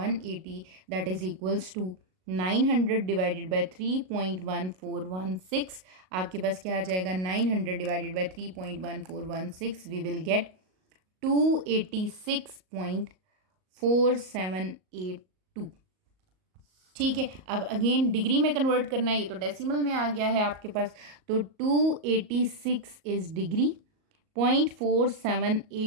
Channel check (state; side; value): late; left; 38 ms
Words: that is equals to 900 divided by 3.1416। आपके पास क्या आ जाएगा? 900 divided by 3.1416, we will get 286.4782। ठीक है, अब अगेन डिग्री में कन्वर्ट करना है, ये तो डेसिमल में आ गया है आपके पास, तो 286 इज डिग्री,